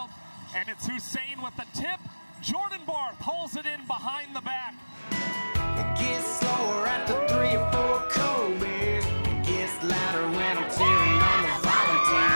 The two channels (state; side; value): inverted; both; correlation -1.00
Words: and it's Hussein with the tip. Jordan Barth holds it in behind the back. It gets slower at the 3 or 4 cold beers. It gets louder when I'm cheering on the